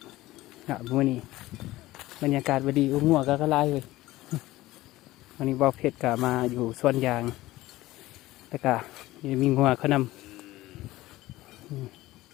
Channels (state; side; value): quieter; right; 17.4 dB